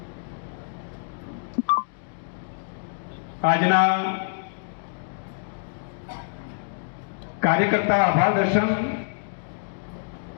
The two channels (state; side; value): silent; right; digital silence